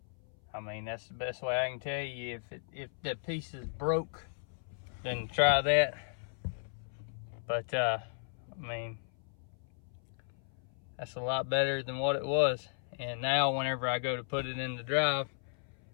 I mean, that's the best way I can tell you. If that piece is broke, then try that. But I mean, that's a lot better than what it was. And now whenever I go to put it in the drive,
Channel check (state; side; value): silent; right; 54 dB below the other